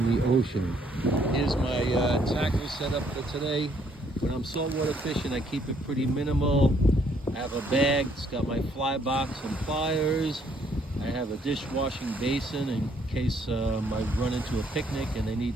the ocean. Here's my tackle setup for today. When I'm saltwater fishing, I keep it pretty minimal. I have a bag, it's got my fly box and pliers. I have a dishwashing basin in case I run into a picnic and they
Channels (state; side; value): normal; both; correlation 0.67